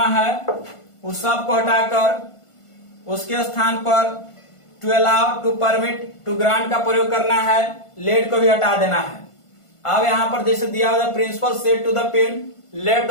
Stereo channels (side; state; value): right; late; 1.5 ms